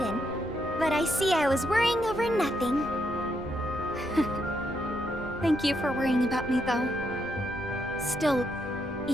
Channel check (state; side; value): normal; both; correlation 0.78